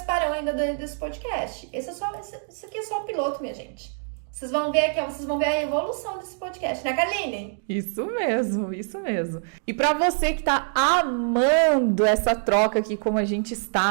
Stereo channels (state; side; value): silent; left; digital silence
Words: ainda desse podcast. Esse aqui é só o piloto, minha gente. Vocês vão ver aqui, ó, vocês vão ver a evolução desse podcast, né, Karline? Isso mesmo, isso mesmo. E para você que tá amando essa troca aqui como a gente